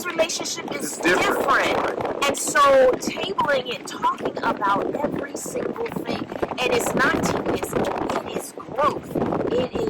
relationship is different. And so tabling it, talking about every single thing, and it's not tedious, it is growth. It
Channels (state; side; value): identical; both; correlation 1.00